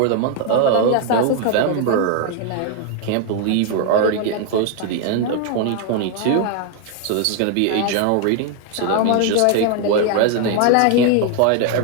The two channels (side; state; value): both; different; correlation 0.00